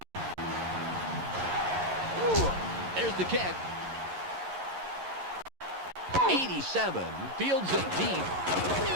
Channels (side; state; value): left; late; 11 ms